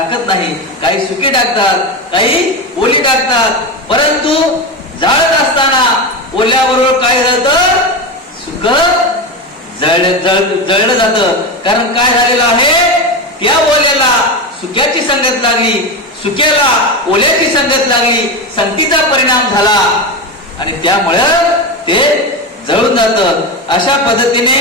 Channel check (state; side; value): normal; both; correlation 0.18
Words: नाही. काही सुकी टाकतात, काही ओली टाकतात. परंतु जाळत असताना ओल्याबरोबर काय झालं? सुक जळलं जातं. कारण काय झालेलं आहे? त्या ओल्याला सुक्याची संगत लागली, सुक्याला ओल्याची संगत लागली, संगतीचा परिणाम झाला आणि त्यामुळं ते जळून जातं. अशा पद्धतीने